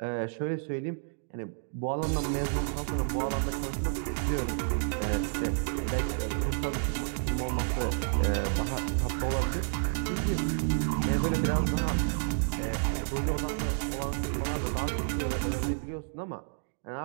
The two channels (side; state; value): left; silent; digital silence